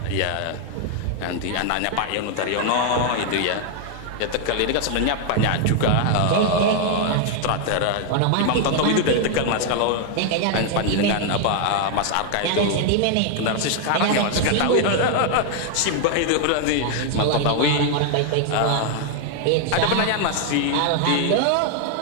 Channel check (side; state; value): both; different; correlation 0.00